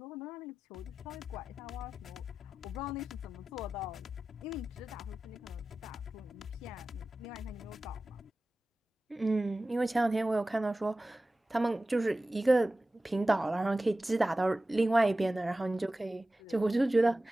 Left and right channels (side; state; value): both; normal; correlation 0.95